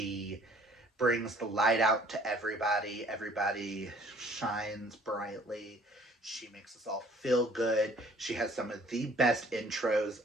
brings the light out to everybody. Everybody shines brightly. She makes us all feel good. She has some of the best intros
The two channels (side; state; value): both; normal; correlation 0.55